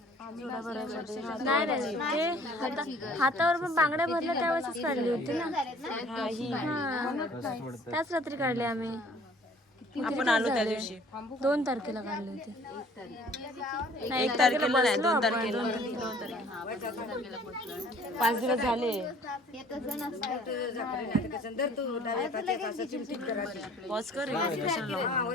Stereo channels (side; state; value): both; normal; correlation 0.54